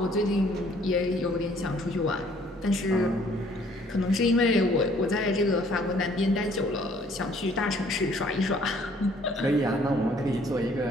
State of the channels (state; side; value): normal; both; correlation 0.60